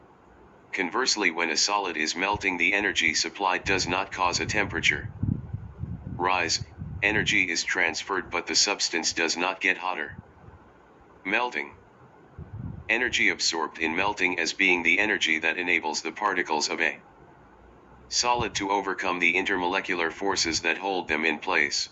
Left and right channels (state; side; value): identical; both; correlation 1.00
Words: Conversely, when a solid is melting, the energy supplied does not cause a temperature rise, energy is transferred but the substance does not get hotter. Melting. Energy absorbed in melting as being the energy that enables the particles of a solid to overcome the intermolecular forces that hold them in place.